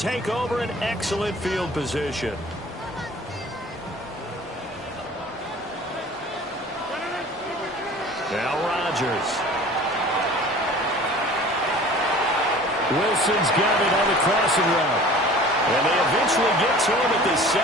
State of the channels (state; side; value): normal; both; correlation 0.45